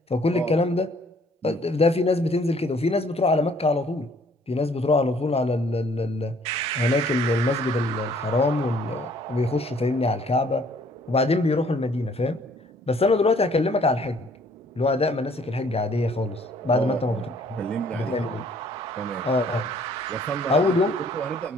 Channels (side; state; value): both; normal; correlation 0.60